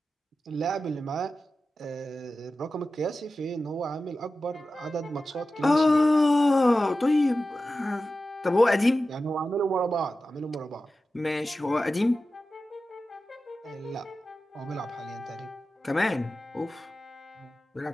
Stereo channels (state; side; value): normal; both; correlation 0.93